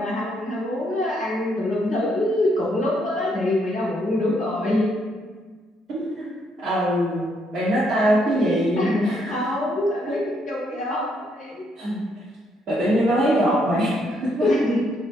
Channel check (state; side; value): normal; both; correlation 0.73